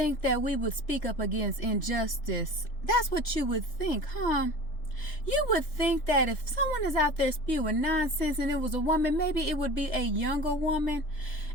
that we would speak up against injustice. That's what you would think, huh? You would think that if someone is out there spewing nonsense and it was a woman, maybe it would be a younger woman.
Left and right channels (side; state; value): right; late; 3.3 ms